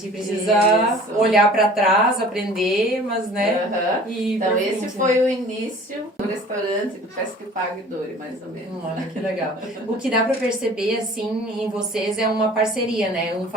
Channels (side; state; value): both; normal; correlation 0.47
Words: precisa Isso. olhar para trás, aprender, mas, né? E Então, pra esse frente, foi o início do restaurante do Pesque Pague Dori, mais ou menos. Olha que legal. O que dá para perceber, assim, em vocês é uma parceria, né? Um